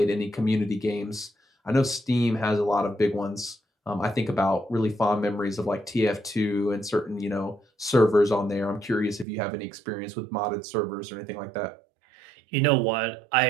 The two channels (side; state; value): left; drops out; at 9.2 s